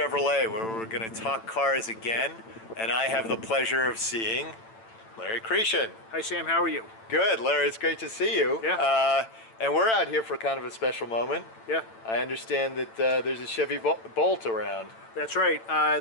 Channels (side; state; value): right; late; 8.9 ms